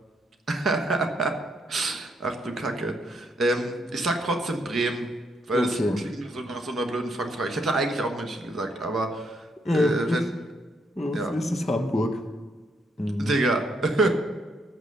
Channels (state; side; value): normal; both; correlation 0.74